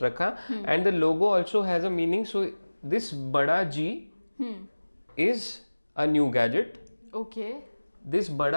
रखा. And the logo also has a meaning. So this बड़ा G is a new gadget. Okay. This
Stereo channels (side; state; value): both; inverted; correlation -1.00